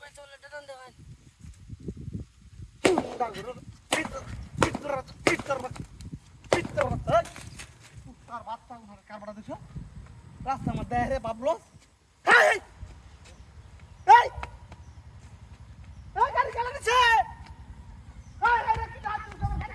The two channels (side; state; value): both; identical; correlation 1.00